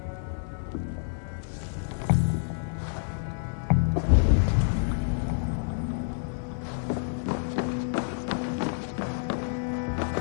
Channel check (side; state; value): right; silent; digital silence